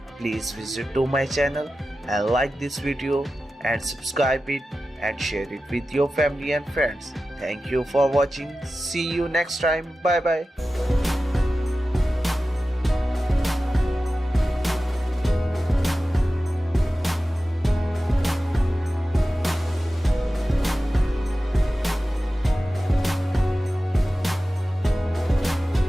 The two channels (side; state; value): both; normal; correlation 0.94